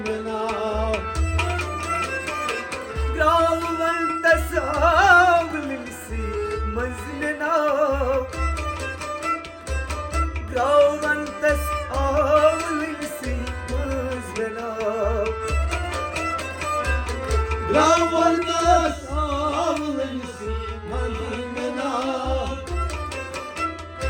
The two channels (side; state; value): both; identical; correlation 1.00